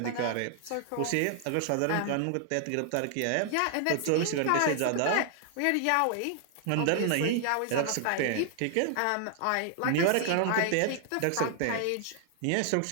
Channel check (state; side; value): different; both; correlation 0.00